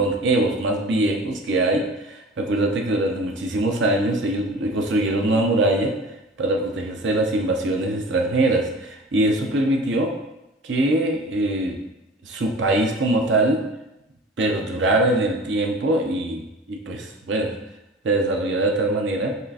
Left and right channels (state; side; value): normal; both; correlation 0.40